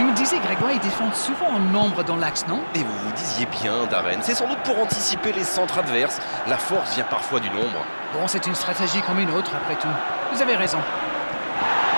me disais, Grégoire, ils défendent souvent en nombre dans l'axe, non? Et vous vous disiez bien, Darren, c'est sans doute pour anticiper les centres adverses. La force vient parfois du nombre. Bon, c'est une stratégie comme une autre, après tout. Vous avez raison.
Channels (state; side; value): inverted; both; correlation -1.00